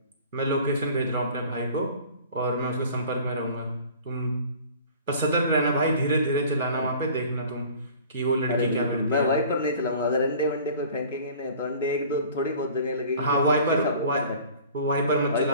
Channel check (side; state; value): both; inverted; correlation -0.46